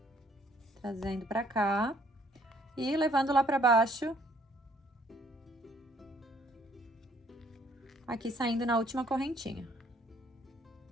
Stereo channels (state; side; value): normal; both; correlation 0.62